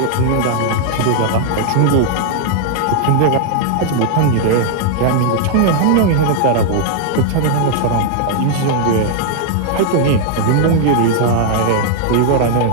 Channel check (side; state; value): both; different; correlation 0.00